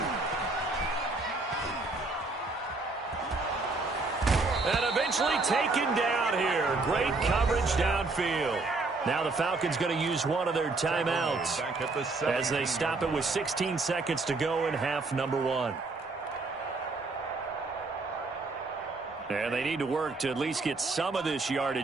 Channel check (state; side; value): quieter; left; 3.6 dB